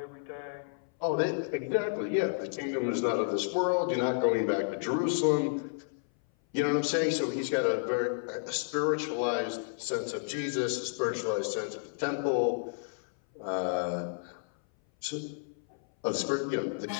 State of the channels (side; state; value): right; silent; 57 dB below the other